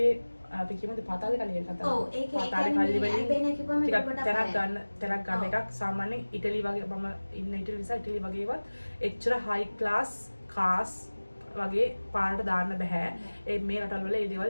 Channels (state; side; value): inverted; both; correlation -1.00